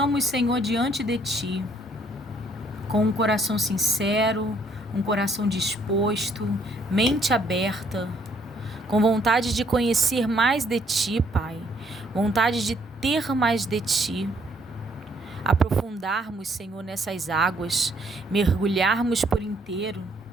Senhor, diante de Ti, com um coração sincero, um coração disposto, mente aberta, com vontade de conhecer mais de Ti, Pai, vontade de ter mais de Ti, aprofundarmos, Senhor, nessas águas, mergulharmos por inteiro,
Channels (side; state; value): both; normal; correlation 0.67